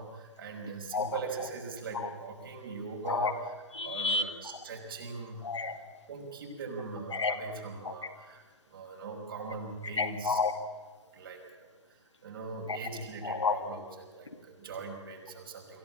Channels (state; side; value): normal; both; correlation 0.05